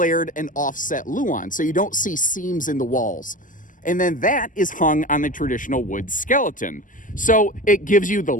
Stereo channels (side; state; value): right; late; 0.38 ms